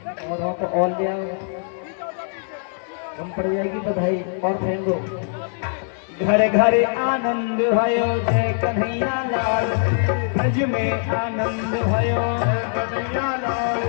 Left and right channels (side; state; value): right; silent; digital silence